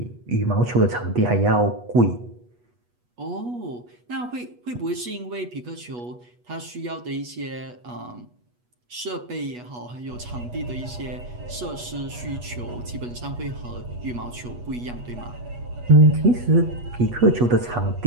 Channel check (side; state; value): left; late; 8.2 ms